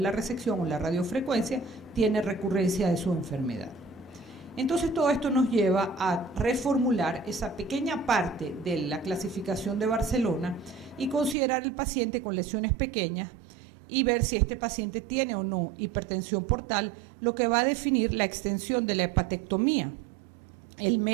resección o la radiofrecuencia tiene recurrencia de su enfermedad. Entonces todo esto nos lleva a reformular esa pequeña parte de la clasificación de Barcelona y considerar el paciente con lesiones pequeñas y ver si este paciente tiene o no hipertensión portal, lo que va a definir la extensión de la hepatectomía. El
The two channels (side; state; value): left; drops out; at 11.4 s